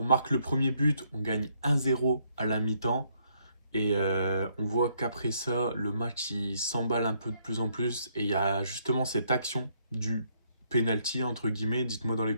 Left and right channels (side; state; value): both; inverted; correlation -0.71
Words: marque le premier but, on gagne 1-0 à la mi-temps. Et on voit qu'après ça, le match il s'emballe un peu de plus en plus. Et il y a justement cette action du penalty, entre guillemets. Dites-moi dans les